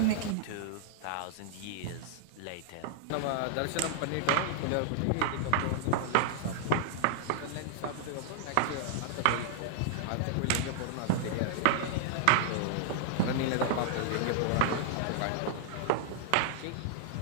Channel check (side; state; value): both; different; correlation 0.00